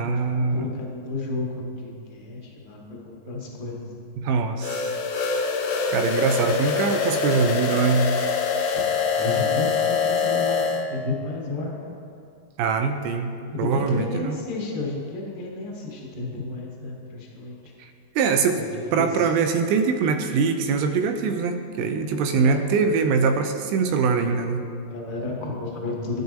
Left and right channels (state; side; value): late; left; 19 ms